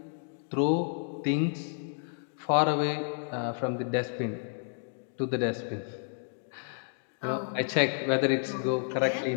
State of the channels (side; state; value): right; silent; digital silence